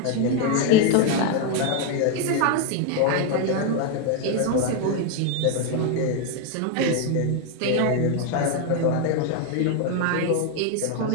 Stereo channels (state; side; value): different; both; correlation 0.01